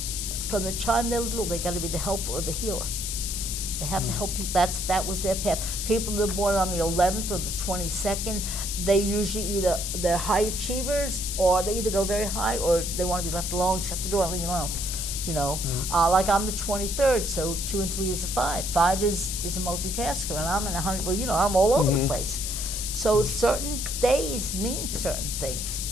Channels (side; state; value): left; noise; hiss, 3 dB below the sound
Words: from the time they're little, they got to be the helper or the healer. They have to help people. That was their path. People that are born on the 11th or the 22nd, they usually they're high achievers, or they either go very high, or they want to be left alone, shut the door, and leave me alone. Like I'm the 23rd, so 2 and 3 is a 5. 5 is a multitasker, and I'm in 100. Well, I'm all over the place. So certain days mean certain things.